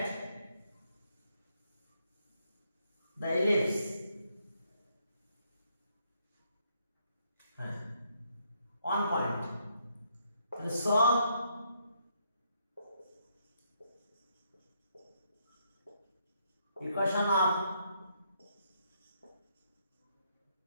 the ellipse on point। তাহলে solve equation of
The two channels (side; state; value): both; inverted; correlation -0.74